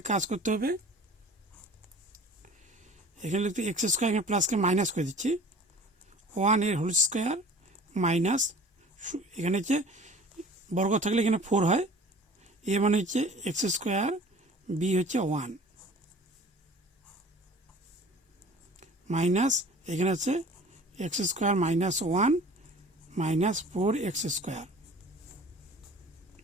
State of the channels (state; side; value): normal; both; correlation 0.45